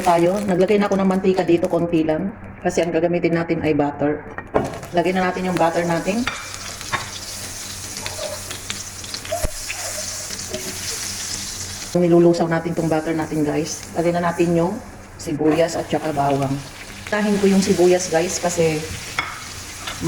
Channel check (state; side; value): identical; both; correlation 1.00